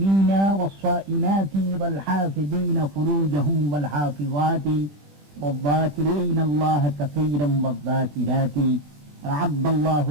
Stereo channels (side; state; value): left; late; 20 ms